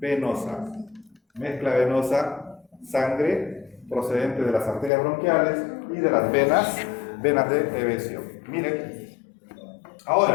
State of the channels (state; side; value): drops out; right; at 4.9 s